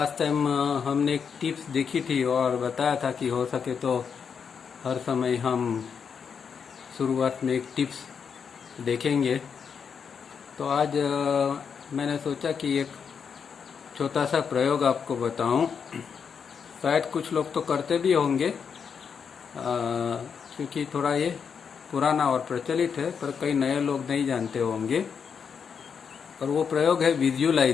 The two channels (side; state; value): right; quieter; 6.6 dB